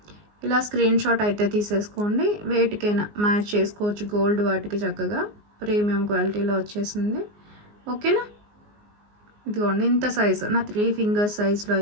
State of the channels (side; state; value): left; late; 19 ms